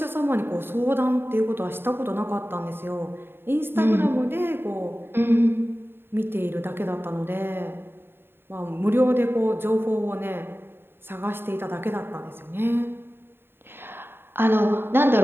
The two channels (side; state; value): left; late; 0.11 ms